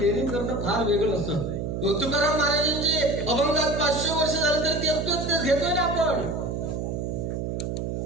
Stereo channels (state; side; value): noise; right; hum, 3 dB below the sound